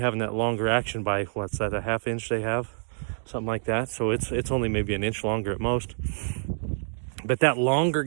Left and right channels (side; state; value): left; silent; digital silence